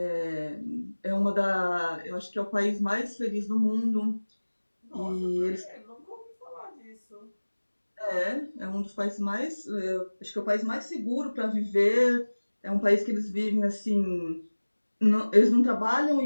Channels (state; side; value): inverted; both; correlation -1.00